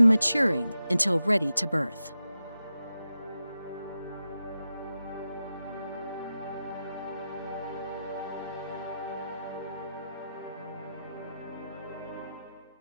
maturing until ready to birth.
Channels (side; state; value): both; inverted; correlation -0.91